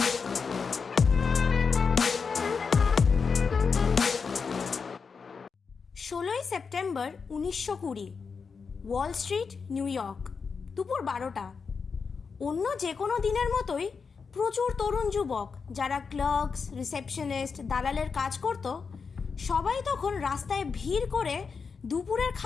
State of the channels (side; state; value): right; quieter; 5.4 dB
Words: 16 September 1920, Wall Street, new York. দুপুর 12টা। অন্য যে কোনো দিনের মতোই প্রচুর তরুণ যুবক যারা ক্লার্কস, রিসেপশনিস্ট, দালালের কাজ করত, সবাই তখন রাস্তায় ভিড় করে দুপুরের